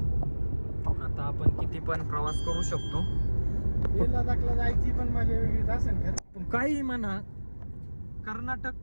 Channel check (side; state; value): both; inverted; correlation -1.00